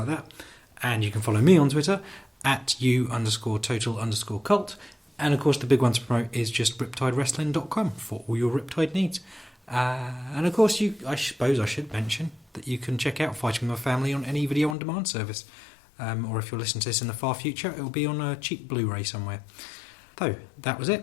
that. And you can follow me on Twitter at @u_total_cult. And of course, the big one to promote is just riptidewrestling.com for all your Riptide needs. And of course, I suppose I should mention that you can check out Fighting With My Family on any video on demand service. Or if you're listening to this in the far future, it will be on a cheap Blu-ray somewhere. So, that was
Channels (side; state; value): right; drops out; at 14.8 s